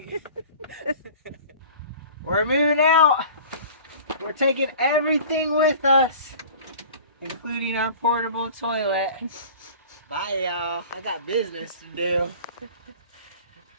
We're moving out. We're taking everything with us, including our portable toilet. Bye, y'all. I got business to do.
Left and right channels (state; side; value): inverted; both; correlation -0.43